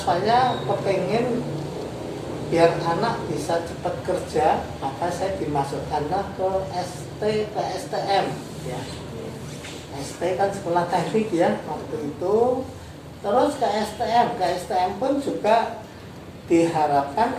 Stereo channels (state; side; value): identical; both; correlation 1.00